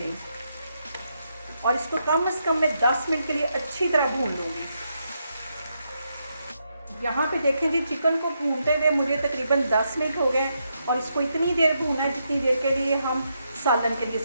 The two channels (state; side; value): inverted; both; correlation -0.81